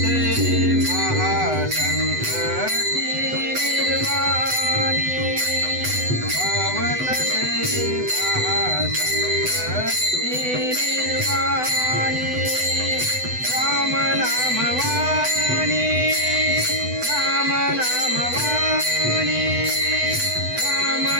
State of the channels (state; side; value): late; left; 8.0 ms